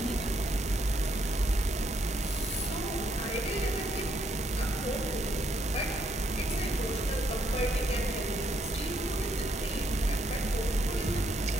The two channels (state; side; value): normal; both; correlation 0.73